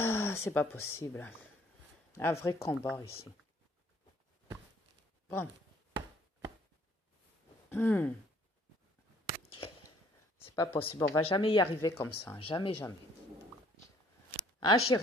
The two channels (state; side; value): normal; both; correlation 0.60